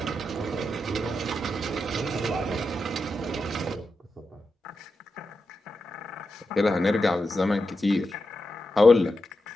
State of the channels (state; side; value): normal; both; correlation 0.88